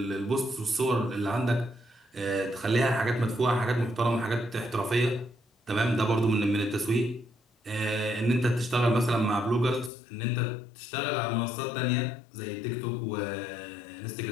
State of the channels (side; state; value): right; drops out; at 9.9 s